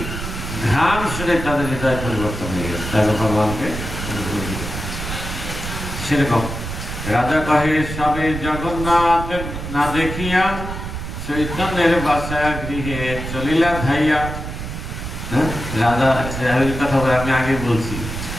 ঘ্রাণ শুনে তাদের হৃদয় পরিবর্তন হয়ে গেছে, তাই ভগবানকে। সেরকম রাজা কহে সবে জগন্নাথ না দেখিয়া, চৈতন্যের বাসা গৃহে চলিলা ধাইয়া। রাজা কথা বলে আমি আগে বলছি,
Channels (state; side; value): noise; right; rumble, 7 dB below the sound